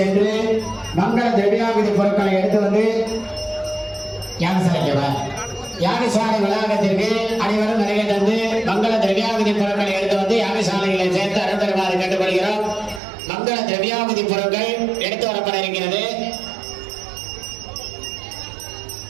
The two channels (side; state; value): left; drops out; at 13.0 s